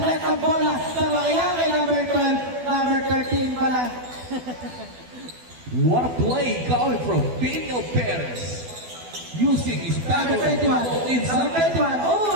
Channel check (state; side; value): late; left; 12 ms